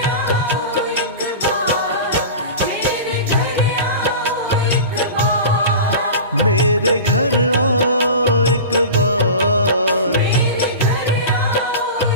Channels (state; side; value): inverted; both; correlation -0.32